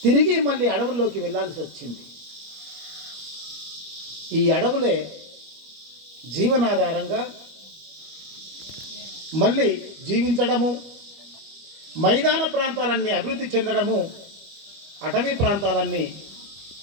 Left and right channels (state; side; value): late; left; 25 ms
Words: తిరిగి మళ్ళీ అడవుల్లోకి వెళ్ళాల్సి వచ్చింది. ఈ అడవులే జీవనాధారంగా మళ్ళీ జీవించడము, మైదాన ప్రాంతాలన్నీ అభివృద్ధి చెందడము, అటవీ ప్రాంతాలన్నీ